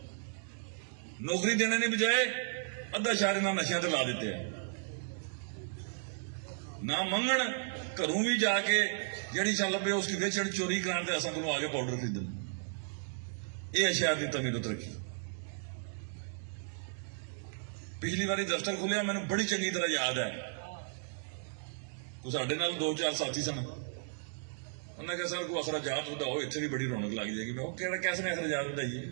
ਨੌਕਰੀ ਦੇਣੇ ਦੀ ਬਜਾਏ ਅੱਧਾ ਸ਼ਹਿਰ ਇਹਨਾਂ ਨਸ਼ਿਆਂ ਤੇ ਲਾ ਦਿੱਤੇ ਹੈ। ਨਾ ਮੰਗਣ ਘਰੋਂ ਵੀ ਜਾ ਕੇ ਜਿਹੜੀ ਚੱਲ ਪਏ ਉਸ ਦੀ ਵੇਚਣ ਚੋਰੀ ਕਰਾਉਣ ਤੇ ਅਸਾਂ ਕੋਲੋਂ ਆ ਕੇ ਪਾਊਡਰ ਖਰੀਦਣ। ਇਹ ਸ਼ਹਿਰ ਦੀ ਤਮੀਰਤ ਰੱਖੀ। ਪਿਛਲੀ ਵਾਰੀ ਦਫ਼ਤਰ ਖੁੱਲਿਆ ਮੈਨੂੰ ਬੜੀ ਚੰਗੀ ਤਰ੍ਹਾਂ ਯਾਦ ਹੈ। ਉਹ ਸਾਡੇ ਨਾਲ 2-4 ਸਾਥੀ ਸਨ। ਉਹਨਾਂ ਕਿਹਾ ਸਰ ਕੋਈ ਅਖਰਾਜਾਤ ਵਧਾਓ, ਇੱਥੇ ਵੀ ਬੜੀ ਰੌਣਕ ਲੱਗ ਜਾਏਗੀ। ਮੈਂ ਉਹ ਕਿਹੜਾ ਕਿਸ ਨੇ ਅਖਰਾਜਾਤ ਵਧਾਈਏ,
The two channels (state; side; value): silent; left; digital silence